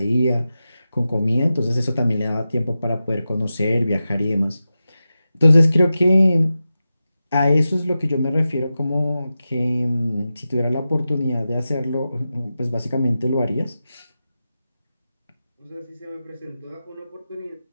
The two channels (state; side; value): inverted; both; correlation -0.93